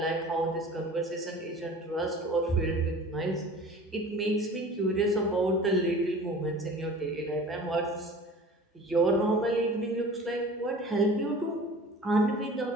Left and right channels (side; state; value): both; normal; correlation 0.42